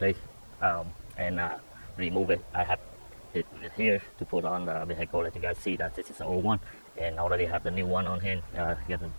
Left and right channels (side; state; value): both; inverted; correlation -1.00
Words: and remove it. I have it here to put on the vehicle. Let you guys see that this is the old one, and I already have the new one on hand, getting